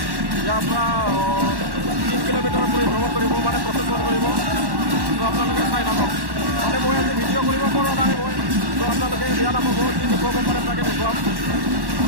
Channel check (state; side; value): late; left; 1.1 ms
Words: ইয়াৰ পৰা 3 কিলোমিটাৰ পৰিভ্ৰমণ কৰিব মানে প্ৰচেছন কৰিব তো আপোনালোকে চাই থাকক মানে মই আজি ভিডিঅ' কৰিব পৰা নাই মই তো আপোনালোকে বিয়া নাপাব যি দেখুৱাব পাৰে তাকে দেখুৱাম